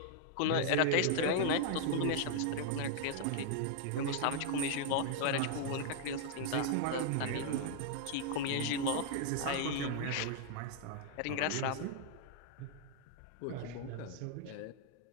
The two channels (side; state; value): both; different; correlation 0.00